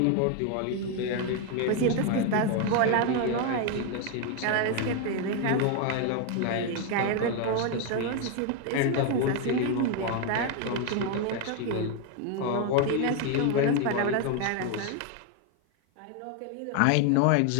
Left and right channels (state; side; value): different; both; correlation 0.01